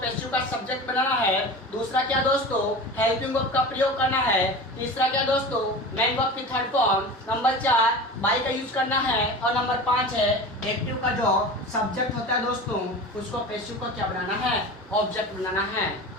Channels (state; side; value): normal; both; correlation 0.33